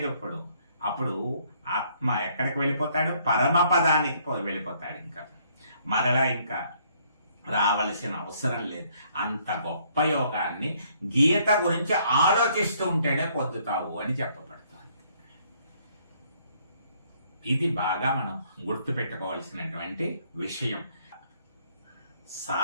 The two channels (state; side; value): inverted; both; correlation -0.66